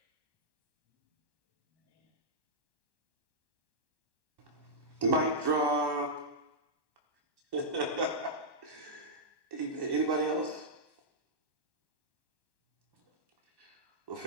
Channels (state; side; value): late; left; 1.1 ms